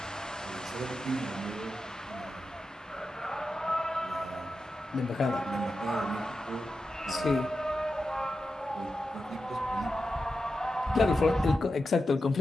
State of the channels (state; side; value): normal; both; correlation 0.90